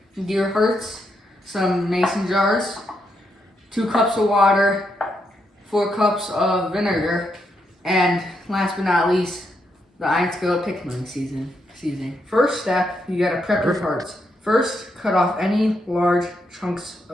deer hearts, some mason jars, 2 cups of water, 4 cups of vinegar, and last but not least, the Iron Skillet pickling seasoning. First step, you gotta prep your hearts. First, cut off any large chunks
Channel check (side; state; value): both; normal; correlation 0.80